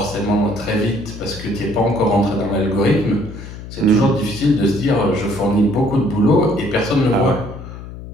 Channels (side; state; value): left; noise; hum, 12 dB below the sound